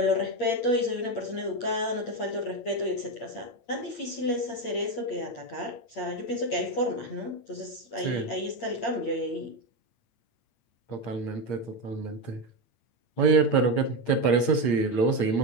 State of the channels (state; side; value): late; right; 8.7 ms